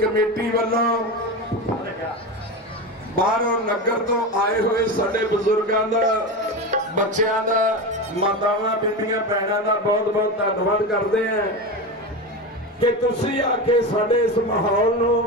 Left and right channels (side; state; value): both; normal; correlation 0.22